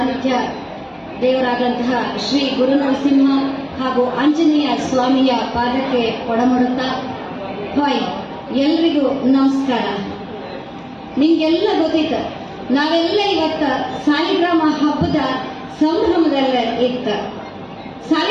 ದೇವರಾದಂತಹ ಶ್ರೀ ಗುರುನರಸಿಂಹ ಹಾಗೂ ಆಂಜನೇಯ ಸ್ವಾಮಿಯ ಪಾದಕ್ಕೆ ಕೊಡಮಡುತ್ತಾ ಹಾಯ್ ಎಲ್ರಿಗೂ ನಮಸ್ಕಾರ. ನಿಮ್ಗೆಲ್ಲ ಗೊತ್ತಿತ್ತು, ನಾವೆಲ್ಲ ಇವತ್ತ ಸಾಲಿಗ್ರಾಮ ಹಬ್ಬದ ಸಂಭ್ರಮದಲ್ಲೇ ಇತ್ತು.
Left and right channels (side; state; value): both; identical; correlation 1.00